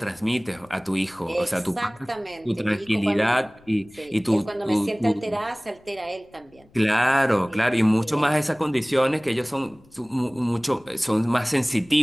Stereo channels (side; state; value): left; noise; rumble, 29 dB below the sound